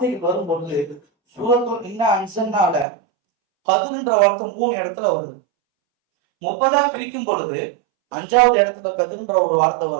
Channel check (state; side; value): drops out; left; at 2.9 s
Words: வரும்பொழுது சூரத்துல் இன்னா அன்ஸல்னால கத்ர்ன்ற வார்த்தை 3 இடத்துல வருது. 30ஆ பிரிக்கும் பொழுது 5வது இடத்துல கத்ர்ன்ற ஒரு வார்த்தை